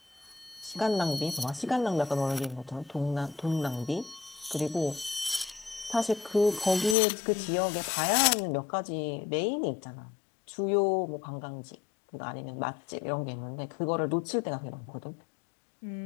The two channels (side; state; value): right; drops out; at 7.0 s